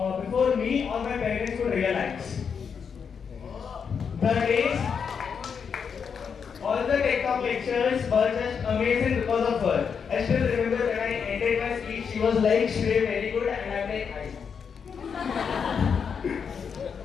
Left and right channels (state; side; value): quieter; right; 6.5 dB